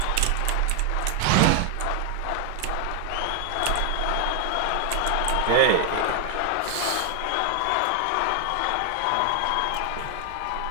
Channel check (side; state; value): both; different; correlation 0.00